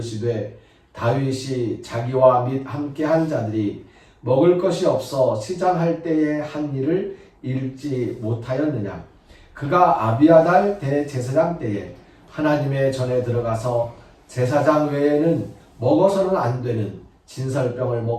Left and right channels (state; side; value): identical; both; correlation 1.00